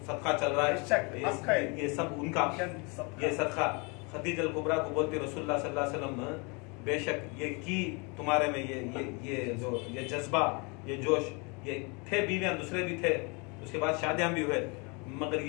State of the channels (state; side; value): quieter; right; 31.2 dB